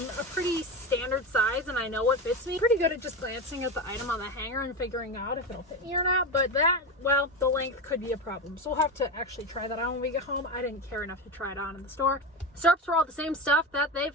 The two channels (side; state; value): both; normal; correlation 0.20